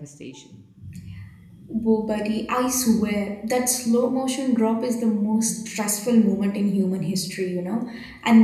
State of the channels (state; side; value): identical; both; correlation 1.00